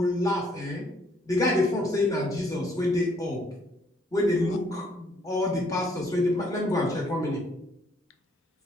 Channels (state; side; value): normal; both; correlation 0.66